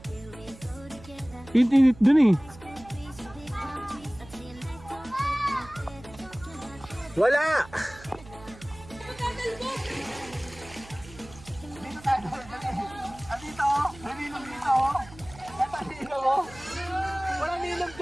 Init doon eh. Wala! Dito tayo. Dito. May nilong dito. Ito nilong. Walang nilong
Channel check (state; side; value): noise; right; hum, 19 dB below the sound